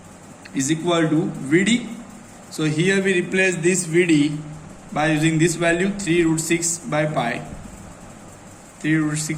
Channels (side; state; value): both; identical; correlation 1.00